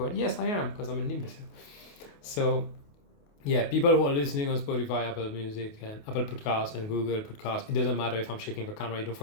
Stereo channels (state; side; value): late; right; 28 ms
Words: Yes, I am, because I'm an imbecile. So, yeah, people who are listening on Spotify, Apple Music, and Apple Podcasts, and Google Podcasts, it doesn't matter if I'm shaking the camera, you don't